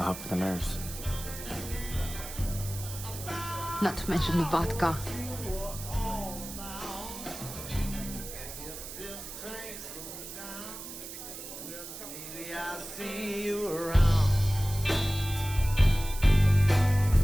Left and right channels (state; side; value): noise; right; hiss, 11 dB below the sound